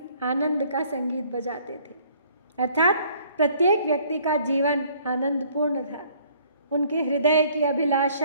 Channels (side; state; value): both; inverted; correlation -0.59